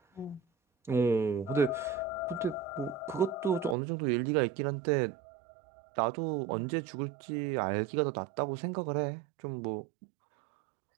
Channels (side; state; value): left; drops out; at 3.8 s